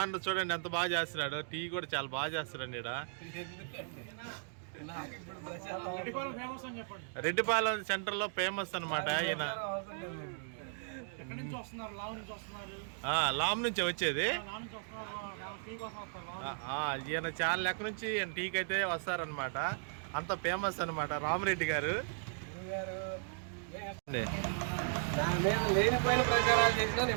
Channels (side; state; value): left; silent; digital silence